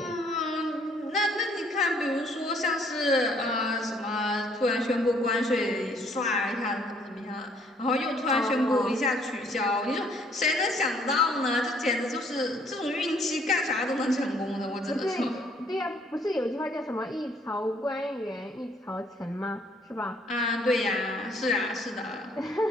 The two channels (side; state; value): both; normal; correlation 0.63